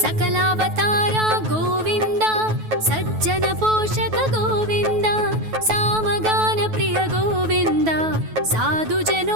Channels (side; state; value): left; late; 9.3 ms